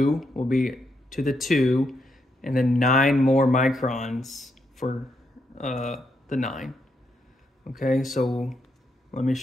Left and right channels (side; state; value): both; normal; correlation 0.80